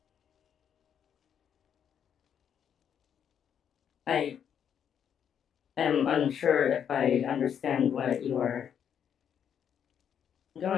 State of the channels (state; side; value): quieter; right; 8.5 dB